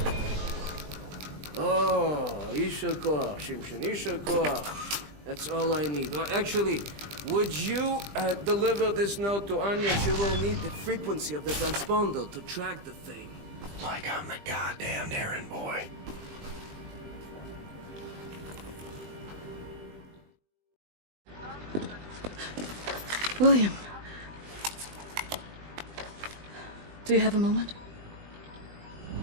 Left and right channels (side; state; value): left; late; 20 ms